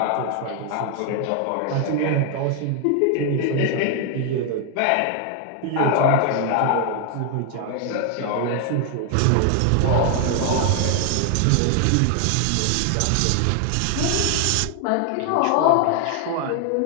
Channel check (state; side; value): different; both; correlation 0.00